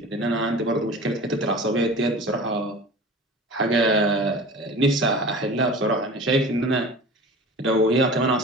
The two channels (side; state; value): both; normal; correlation 0.38